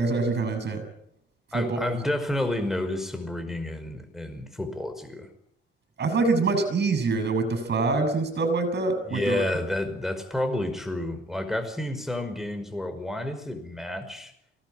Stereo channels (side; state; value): both; normal; correlation 0.61